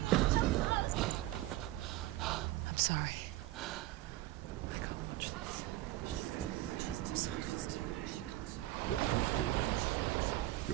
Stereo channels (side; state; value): left; quieter; 16.4 dB